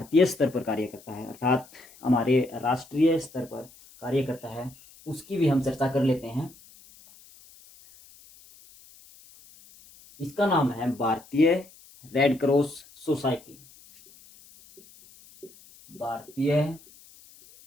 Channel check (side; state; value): left; noise; hiss, 24 dB below the sound